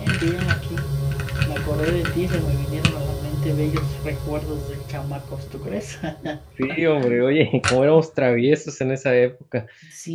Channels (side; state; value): both; identical; correlation 1.00